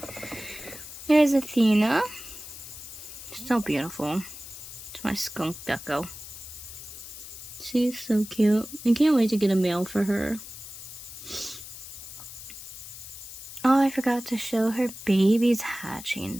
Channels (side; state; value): left; noise; hiss, 13 dB below the sound